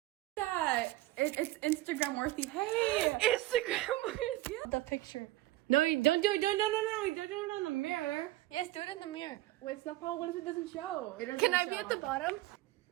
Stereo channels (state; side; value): quieter; left; 16.8 dB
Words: That it's Instagram worthy. Hey, Instagram worthy. The picture. No, don't do it. No. Don't do it on the mirror. Yes, do it in the mirror. wait, stop. What if it doesn't show? Can I be at the bottom?